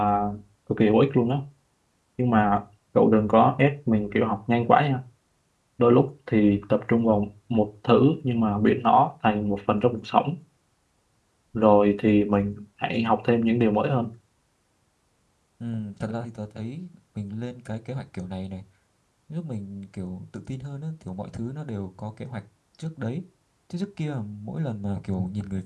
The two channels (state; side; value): identical; both; correlation 1.00